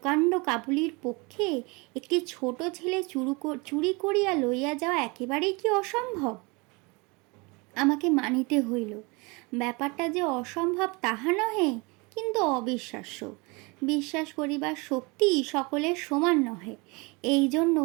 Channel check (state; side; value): quieter; left; 27.5 dB